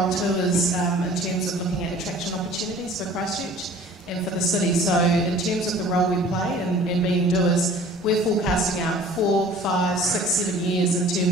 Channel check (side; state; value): both; normal; correlation 0.48